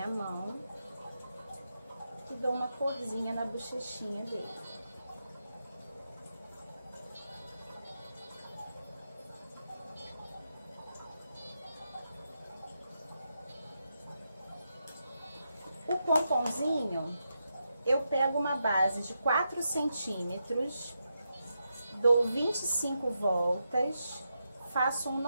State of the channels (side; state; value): both; inverted; correlation -0.86